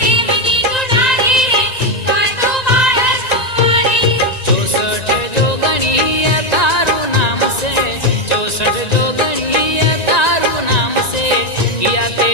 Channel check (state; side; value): late; right; 1.9 ms